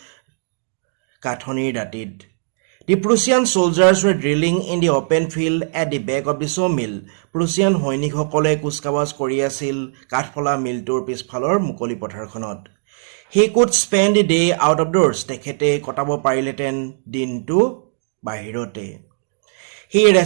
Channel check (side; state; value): left; silent; digital silence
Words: কাঠনিৰ দাঁতিত The Prussian soldiers were drilling in the open field at the back of the sawmill. Prussian সৈনিকসকলে কুচকাৱাজ কৰি আছিল কাঠফলা মিলটোৰ পিছফালৰ মুকলি পথাৰখনত He could spend the day out of doors. তেখেতে কটাব পাৰিলেতেন দিনটো বাহিৰতে He